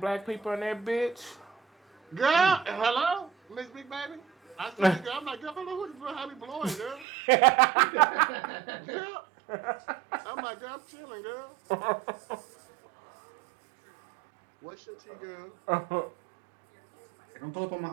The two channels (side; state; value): left; drops out; at 7.1 s